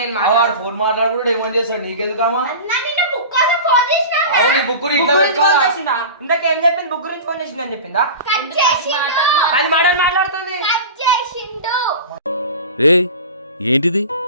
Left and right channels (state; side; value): inverted; both; correlation -0.33